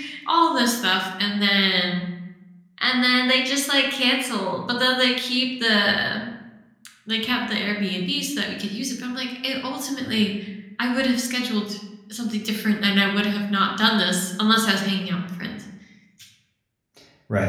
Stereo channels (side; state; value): both; identical; correlation 1.00